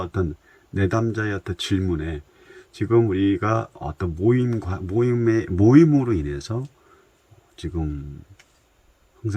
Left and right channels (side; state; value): both; identical; correlation 1.00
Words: 내담자의 어떤 질문에, 지금 우리가 어떤 모임으로 인해서 지금